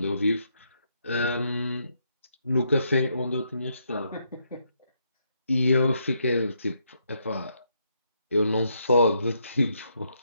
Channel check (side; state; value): both; inverted; correlation -0.76